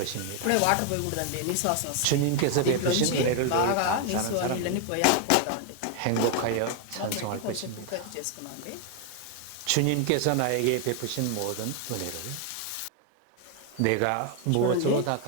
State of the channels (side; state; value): both; different; correlation 0.00